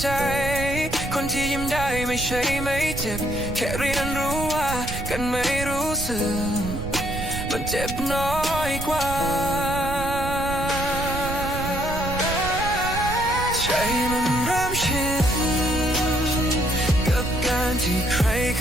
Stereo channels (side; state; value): right; noise; rumble, 7 dB below the sound